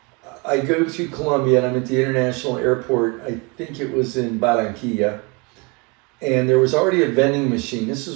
I go to Colombia and I'm at the international airport. I think it was in Barranquilla. And there was already a vending machine. This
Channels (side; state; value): left; quieter; 29.8 dB